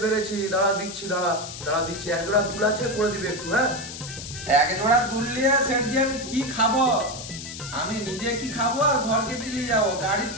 পেরেছি। দাঁড়া দিচ্ছি। এক জোড়া দুল আছে, করে দিবে একটু। হ্যাঁ এক জোড়া দুল নিয়ে সেটজি আমি কি খাবো? আমি নিজে কি খাবো আর ঘরকে কি নিয়ে যাবো? গাড়ির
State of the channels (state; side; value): noise; left; hiss, 10 dB below the sound